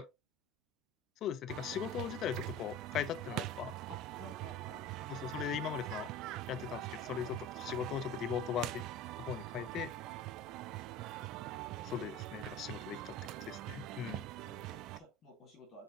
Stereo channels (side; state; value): both; normal; correlation 0.36